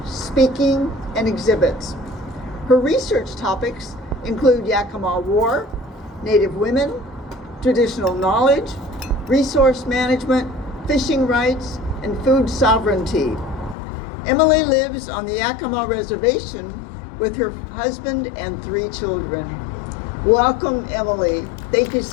speaking, and exhibits. Her research topics include Yakama War, Native women, traditional knowledge, resource management, fishing rights, and food sovereignty. Emily lives on the Yakama Reservation with her husband and 3 children. Welcome, Emily. Thank you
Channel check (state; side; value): drops out; right; at 13.8 s